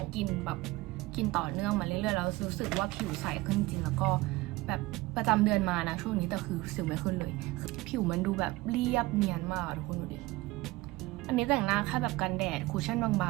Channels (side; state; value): left; quieter; 20.1 dB